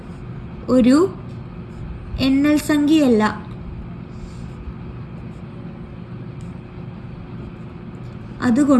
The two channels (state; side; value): identical; both; correlation 1.00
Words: ഒരു എണ്ണൽ സംഖ്യയല്ല.